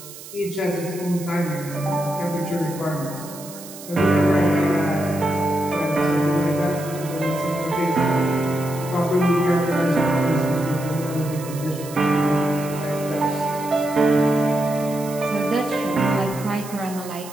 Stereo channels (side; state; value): right; noise; hiss, 15 dB below the sound